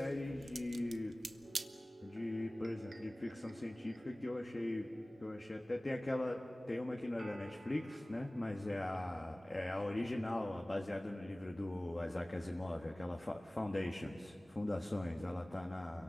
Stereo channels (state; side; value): normal; both; correlation 0.98